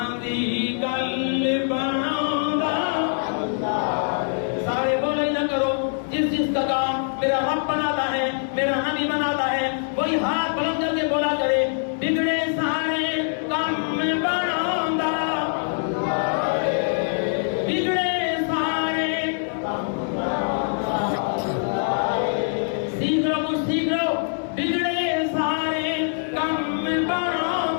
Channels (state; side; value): silent; right; digital silence